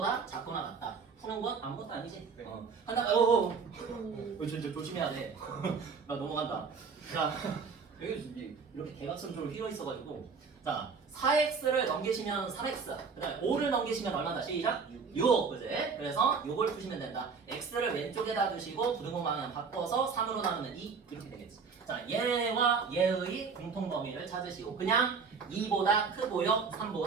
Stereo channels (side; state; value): left; quieter; 5.4 dB